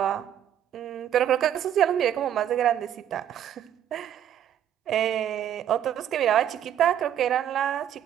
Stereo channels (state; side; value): quieter; left; 10.3 dB